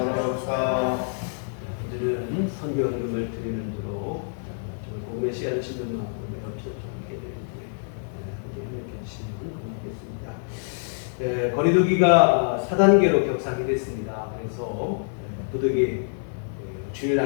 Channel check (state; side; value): silent; right; 61 dB below the other